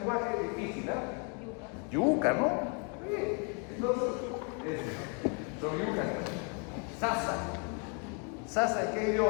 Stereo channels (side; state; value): right; quieter; 37.7 dB